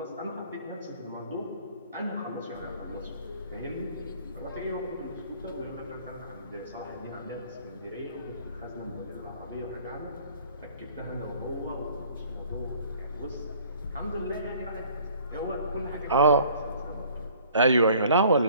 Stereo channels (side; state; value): both; inverted; correlation -0.55